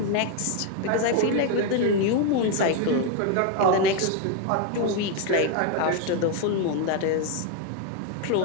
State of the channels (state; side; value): different; both; correlation 0.01